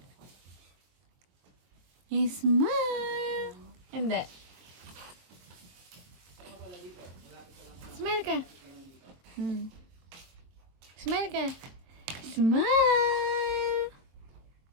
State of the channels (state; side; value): late; left; 22 ms